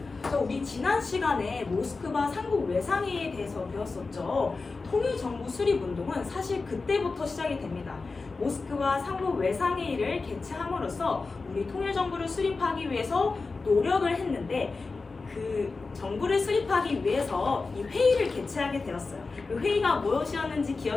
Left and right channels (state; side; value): quieter; right; 4.0 dB